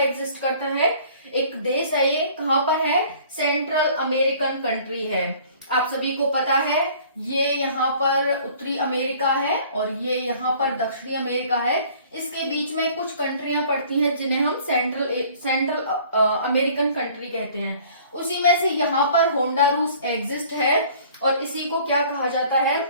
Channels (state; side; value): inverted; both; correlation -0.52